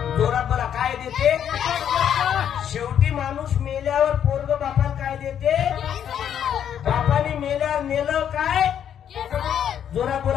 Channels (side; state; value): right; quieter; 9.2 dB